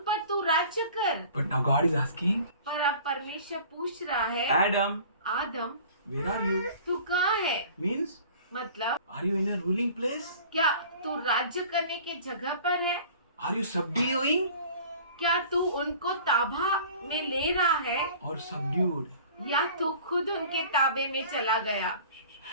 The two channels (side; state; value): both; inverted; correlation -0.46